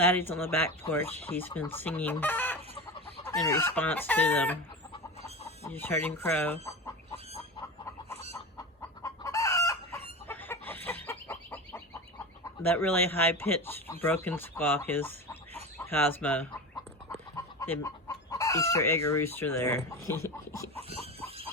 on the back porch. He's been singing in response to them. You just heard him crow. That really high-pitched, broken squawk is Cosmo, the Easter egg rooster there.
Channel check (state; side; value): normal; both; correlation 0.26